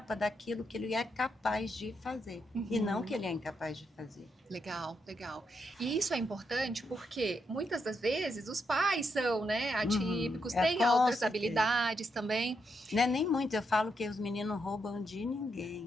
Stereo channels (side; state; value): both; normal; correlation 0.81